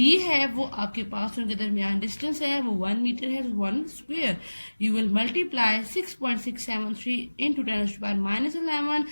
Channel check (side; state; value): both; inverted; correlation -1.00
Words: है वो आपके पास उनके दरमियान डिस्टेंस है वो 1 मीटर है, 1 square. You will multiply 6.673 into 10⁻⁻11